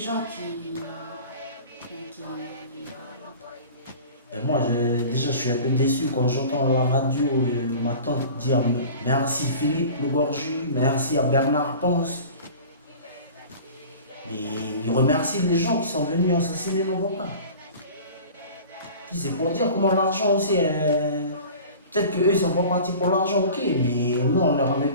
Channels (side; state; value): both; inverted; correlation -0.40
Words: Et moi, déjà, je suis un peu déçu quand j'entends à la radio ma tante dire merci Philippe Le Gorju, merci à Bernard Ponce. Mais il remercie les gens qui sont venus assassiner nos papas. Puis c'est pour dire comment l'argent aussi, peut-être qu'eux ils sont pas partis pour l'argent, ok, mais nous on leur avait